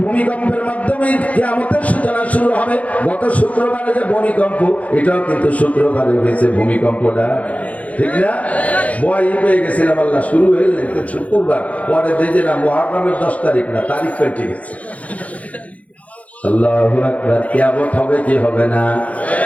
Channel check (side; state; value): right; late; 0.068 ms